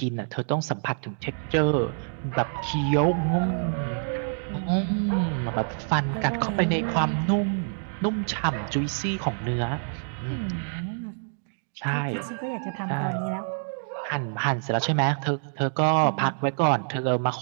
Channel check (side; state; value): left; silent; 60 dB below the other